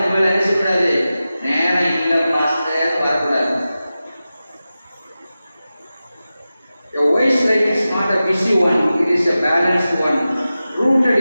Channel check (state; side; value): inverted; both; correlation -0.94